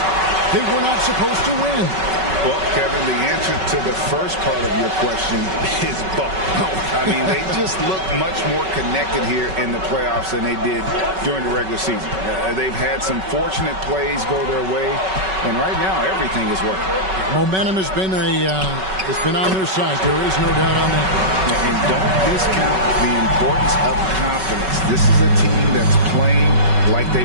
they were not supposed to win? Well, Kevin, the answer to the first part of your question is both. I mean, they just look much more connected here in the playoffs than they did during the regular season. They've had some fortunate plays go their way, and right now everything is working. Momentum has been on their side. There is no doubt on that. And don't discount the importance of confidence. This is a team that's playing like they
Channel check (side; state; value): left; late; 5.3 ms